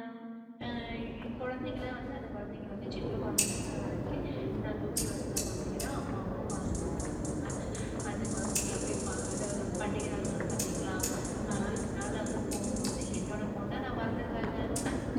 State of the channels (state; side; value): identical; both; correlation 1.00